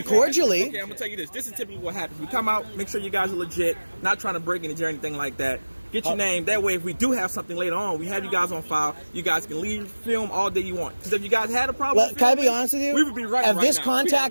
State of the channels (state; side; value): inverted; both; correlation -1.00